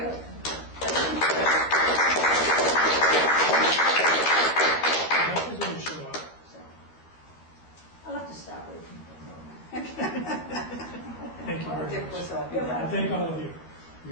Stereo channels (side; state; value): right; late; 12 ms